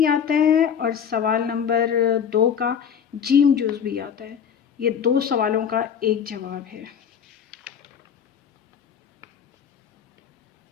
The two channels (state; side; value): quieter; right; 7.8 dB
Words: آتا ہے اور سوال نمبر 2 کا جیم جز بھی آتا ہے۔ یہ 2 سوالوں کا ایک جواب ہے۔